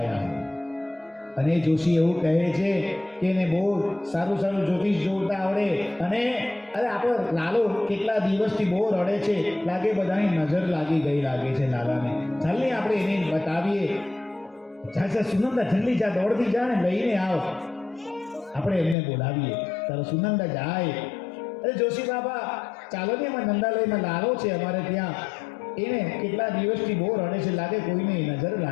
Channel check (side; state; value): right; drops out; at 18.9 s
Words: है. અને જોશી એવું કહે છે કે એને બહુ સારું સારું જ્યોતિષ જોતા આવડે. અને અરે આપણો લાલો કેટલા દિવસથી બહુ રડે છે, લાગે બધાની નજર લાગી ગઈ લાગે છે લાલાને. ચાલને આપણે એને બતાવીએ. જા સુનંદા, જલ્દી જા, દોડતી જા ને લઈને આવ, આપણે એમને બોલાવીએ. તારો સુનંદા જાય. અરે જોશી બાબા ચાલો ને, એમાં નંદાલયમાં લાલો છે અમારે ત્યાં, એને કેટલા દિવસથી બહુ રડે છે, લાગે કોઈને નજર